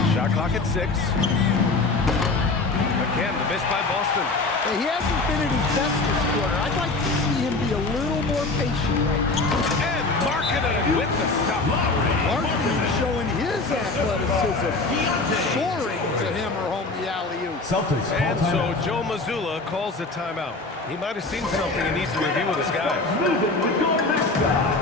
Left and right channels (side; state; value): right; quieter; 3.5 dB